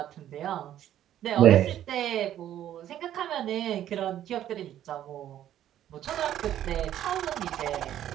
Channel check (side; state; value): left; quieter; 11.6 dB